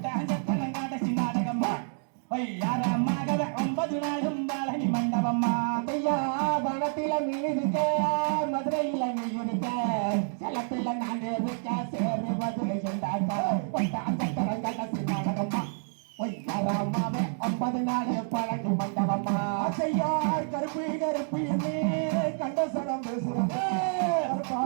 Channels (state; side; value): silent; left; 59 dB below the other